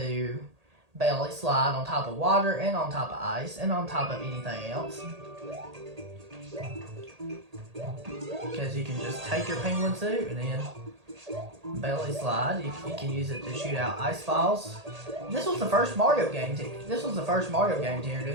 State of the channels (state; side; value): late; left; 1.8 ms